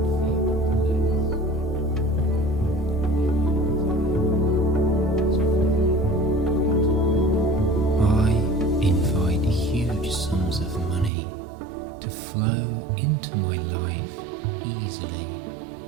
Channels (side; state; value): left; drops out; at 11.1 s